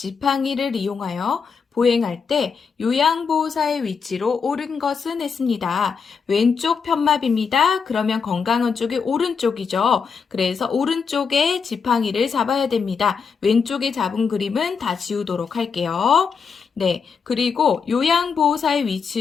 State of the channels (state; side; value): quieter; right; 5.8 dB